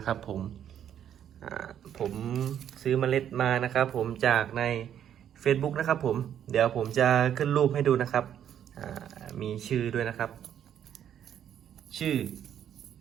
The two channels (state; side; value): quieter; left; 9.8 dB